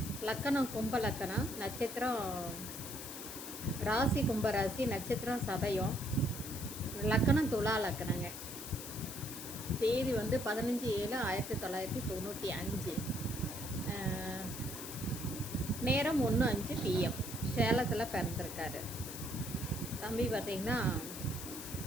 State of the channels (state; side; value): noise; left; hiss, 9 dB below the sound